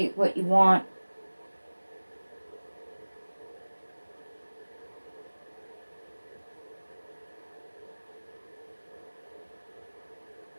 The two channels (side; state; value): both; inverted; correlation -1.00